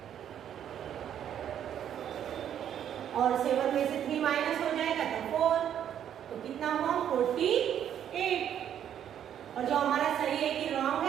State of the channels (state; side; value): quieter; left; 9.8 dB